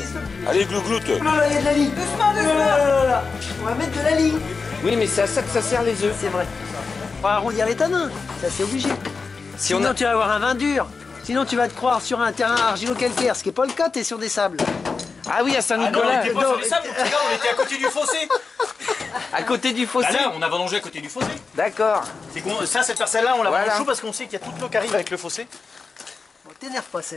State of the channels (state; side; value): quieter; right; 4.6 dB